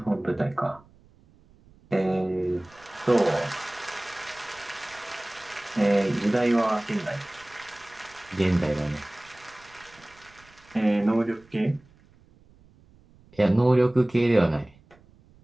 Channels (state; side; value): noise; right; rumble, 28 dB below the sound